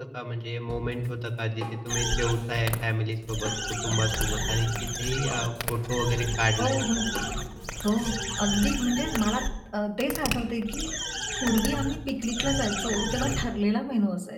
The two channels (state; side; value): identical; both; correlation 1.00